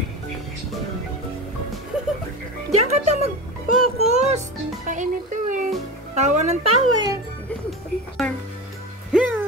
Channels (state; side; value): normal; both; correlation 0.26